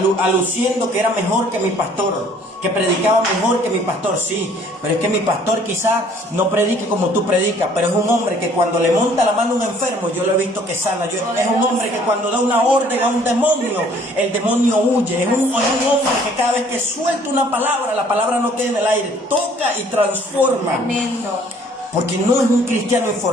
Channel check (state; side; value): normal; both; correlation 0.58